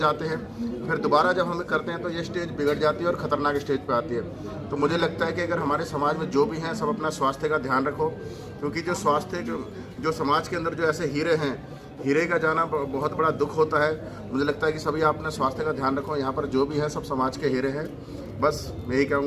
हैं, फिर दोबारा जब हम करते हैं तो ये स्टेज बिगड़ जाती है और ख़तरनाक स्टेज पे आती है। तो मुझे लगता है कि अगर हमारे समाज में जो भी हैं सब अपना स्वास्थ्य का ध्यान रखो, क्योंकि जो स्वास्थ्य जो समाज के अंदर जो ऐसे हीरे हैं, हीरे का जाना बहुत बड़ा दुख होता है। मुझे लगता है कि सभी आप अपने स्वास्थ्य का ध्यान रखो। यहाँ पर जो भी है सब समाज के हीरे हैं। बस मैं यही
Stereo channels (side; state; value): both; identical; correlation 1.00